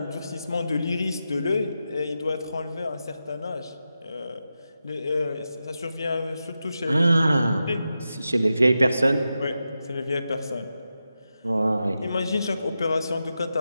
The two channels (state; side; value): inverted; both; correlation -0.90